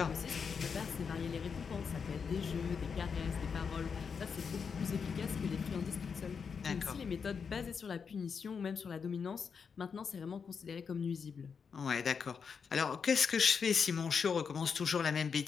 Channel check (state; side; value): quieter; right; 6.1 dB